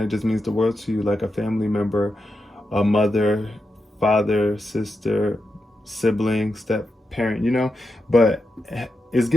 just means the world to you, like a family member, a mother, father, sister, sibling, step parent, you know. But it's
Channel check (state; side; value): normal; both; correlation 0.87